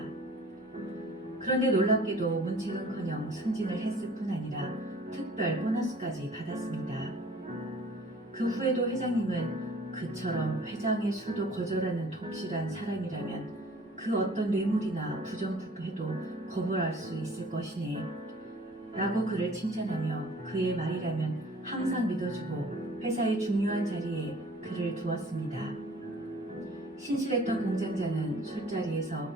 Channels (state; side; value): normal; both; correlation 0.50